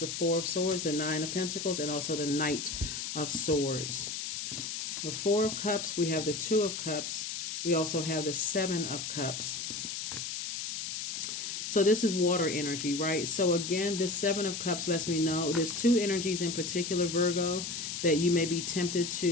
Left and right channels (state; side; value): noise; left; hiss, 5 dB below the sound